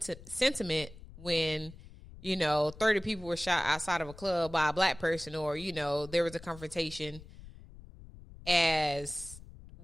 when 30 people were shot outside of a club by a black person, or, there was a confrontation as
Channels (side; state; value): left; noise; rumble, 18 dB below the sound